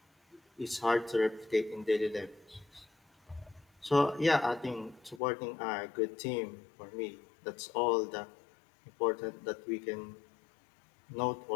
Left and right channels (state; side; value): drops out; right; at 5.2 s